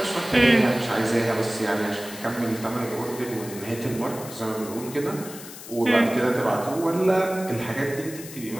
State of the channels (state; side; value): noise; left; hiss, 14 dB below the sound